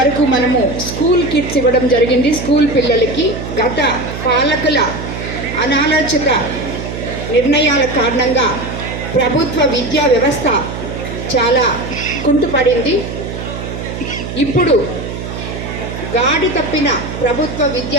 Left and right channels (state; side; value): noise; right; hum, 7 dB below the sound